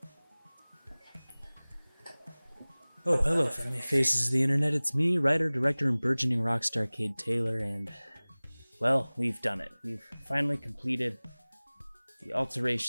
Oh, hello, friendly faces of the internet. It's me, writer, director, and burgeoning rock star Cade Taylor, and, well, we've done it. We've finally completed the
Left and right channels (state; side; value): inverted; both; correlation -1.00